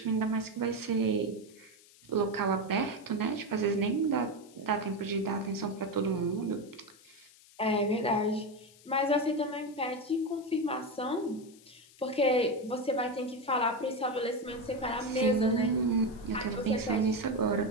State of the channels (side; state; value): left; noise; hiss, 25 dB below the sound